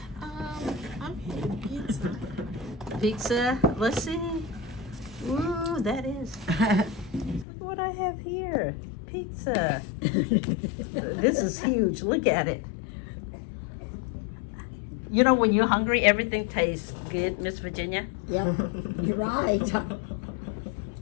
I'm having pizza. Pizza. Let's see. Ooh, that is. Look what I have here. Pizza. This is huge. Look at it. You know, when you're hungry, everything tastes good, Miss Virginia. Yep, you're right.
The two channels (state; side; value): drops out; right; at 7.5 s